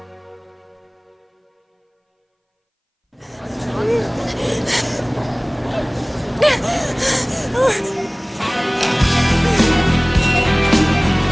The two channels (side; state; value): both; identical; correlation 1.00